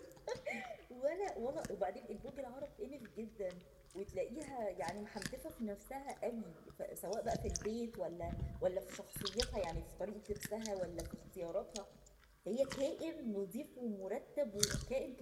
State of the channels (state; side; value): identical; both; correlation 1.00